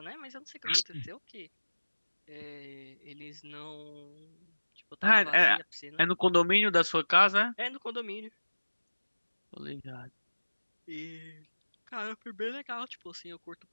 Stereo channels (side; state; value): both; inverted; correlation -1.00